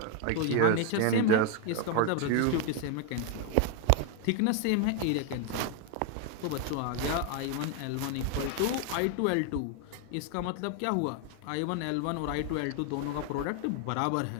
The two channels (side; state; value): both; different; correlation 0.01